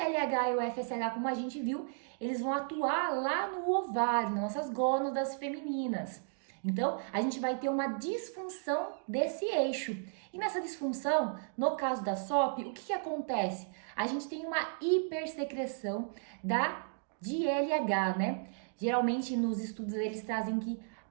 e o FSH, como a gente viu, eles vão atuar lá no ovário, nas nossas gônadas femininas. Então, a gente vai ter uma disfunção desse eixo. E nessa disfunção, no caso da SOP, o que acontece? A gente tem uma hipersecreção de LH, né? Geralmente, nos estudos, eles trazem que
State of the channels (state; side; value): silent; left; digital silence